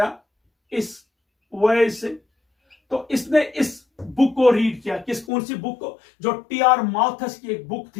इस वजह से, तो इसने इस बुक को रीड किया। कौन सी बुक को? जो TR माल्थस की एक बुक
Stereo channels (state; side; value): drops out; right; at 5.2 s